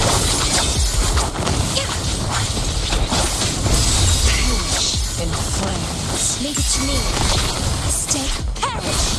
Perish in flames. Leave it to me. Stay, perish.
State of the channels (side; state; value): both; identical; correlation 1.00